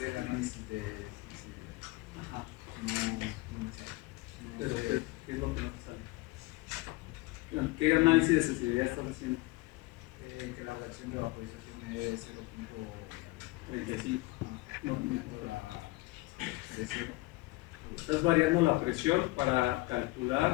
análisis de Ajá. no Pero, sé, ¿qué es lo que no te sale? ¿Qué análisis de sensibilidad estás haciendo? que la relación de vaporización es 35. variando la presión. Estás variando la presión para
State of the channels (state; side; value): quieter; right; 21.3 dB